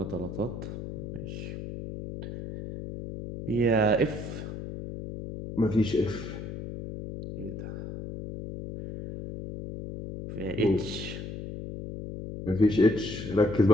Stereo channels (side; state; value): left; noise; hum, 8 dB below the sound